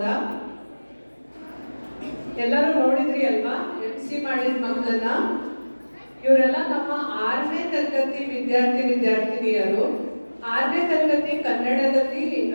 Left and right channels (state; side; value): inverted; both; correlation -1.00